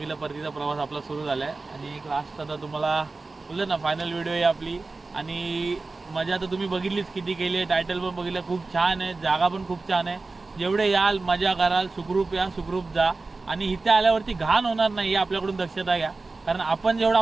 परतीचा प्रवास आपला सुरू झाला आहे. आणि एक लास्ट आता तुम्हाला बोललं ना फायनल व्हिडिओ आहे आपली. आणि मजा तर तुम्ही बघितलीच किती केली आहे. टायटल पण बघितलं, खूप छान आहे. जागा पण खूप छान आहे. जेवढे याल मजा कराल, सुखरूप या सुखरूप जा. आणि इथे आल्यावरती घाण होणार नाही, आपल्याकडून दक्षता घ्या. कारण आपण जेवढा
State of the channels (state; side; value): quieter; left; 3.7 dB